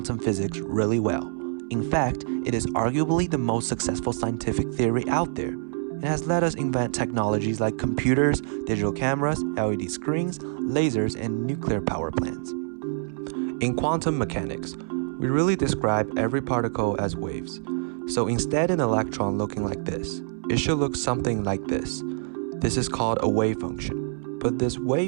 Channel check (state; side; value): silent; left; 61 dB below the other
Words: physics really well. In fact, it is arguably the most successful scientific theory out there. It has let us invent technologies like computers, digital cameras, LED screens, lasers, and nuclear power plants. In quantum mechanics, we really describe every particle as waves. So instead an electron looking like this, it should look something like this. This is called a wave function. But this